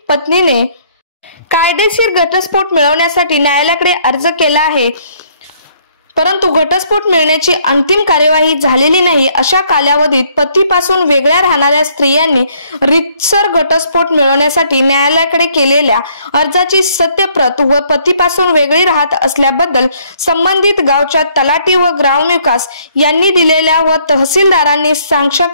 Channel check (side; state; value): both; inverted; correlation -0.65